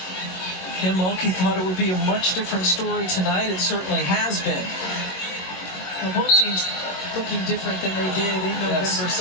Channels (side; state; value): right; late; 21 ms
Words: Kim Mulkey thought it would be a much different story tonight. It certainly has been. Well, both teams looking different than they did in November,